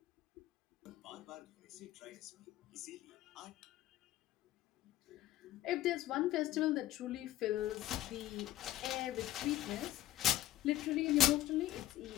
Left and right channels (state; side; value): quieter; right; 14.1 dB